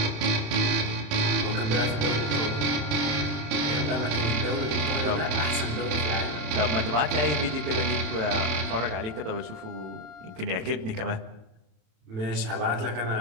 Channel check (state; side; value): late; left; 27 ms